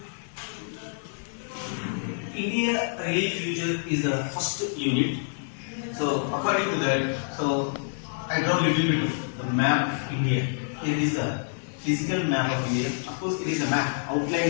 India relief future is the first unit. So according to that, so I draw a little bit of the map of India. Here is the physical map of India. Of course, it is a map,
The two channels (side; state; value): right; silent; digital silence